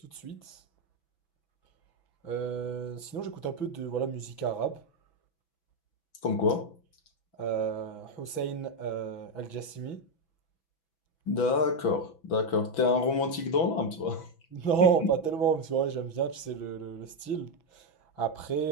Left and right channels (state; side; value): late; right; 6.0 ms